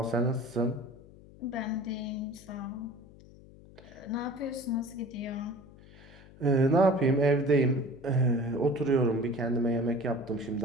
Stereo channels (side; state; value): left; noise; hum, 21 dB below the sound